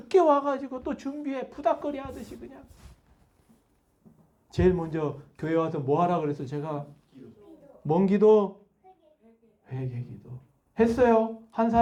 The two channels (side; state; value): both; identical; correlation 1.00